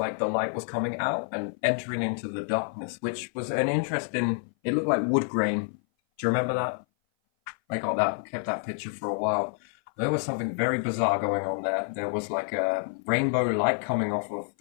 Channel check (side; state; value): right; silent; 57 dB below the other